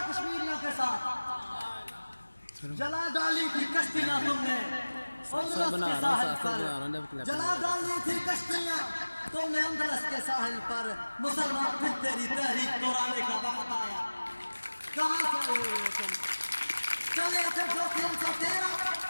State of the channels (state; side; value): inverted; both; correlation -1.00